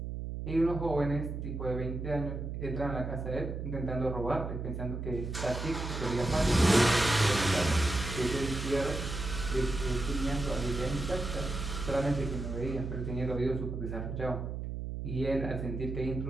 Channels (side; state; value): right; noise; hum, 5 dB below the sound